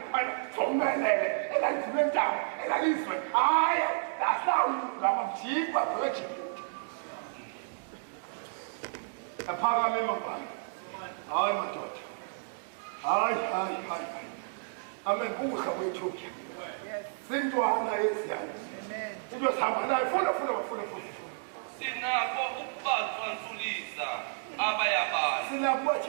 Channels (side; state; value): left; silent; digital silence